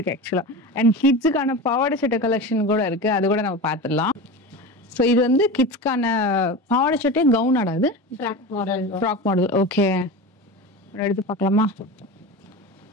ஆக்சுவலா. அண்ட் கிட்ஸுக்கான பாவாடை சட்டை கலெக்ஷன் கூட இருக்கு. அது கூட நம்ம பார்த்துடலாம். ஸோ இது வந்து கிட்ஸ்க்கான பாவாடை சட்டை கவுன் ஆடாது, ஃப்ராக் மாடல். ஓகே, எடுத்து பார்க்கலாமா?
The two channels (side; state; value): both; normal; correlation 0.27